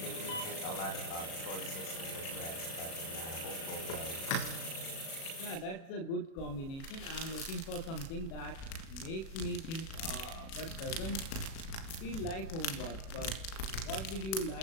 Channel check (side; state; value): right; late; 37 ms